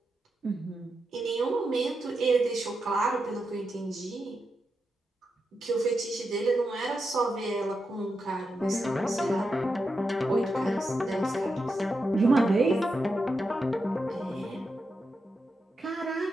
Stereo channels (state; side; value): normal; both; correlation 0.87